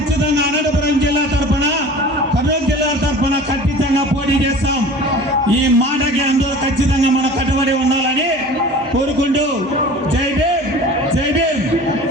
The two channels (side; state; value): both; normal; correlation 0.41